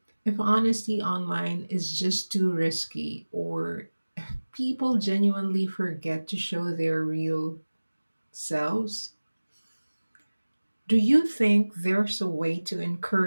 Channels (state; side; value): inverted; both; correlation -1.00